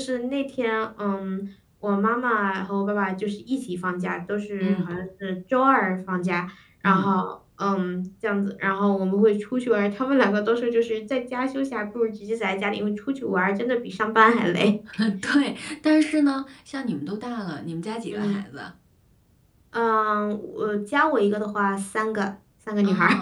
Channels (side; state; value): both; identical; correlation 1.00